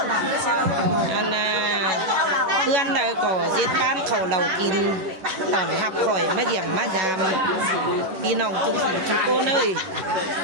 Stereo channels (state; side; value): late; left; 11 ms